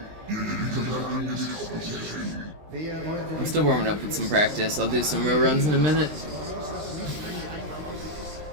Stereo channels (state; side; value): late; left; 20 ms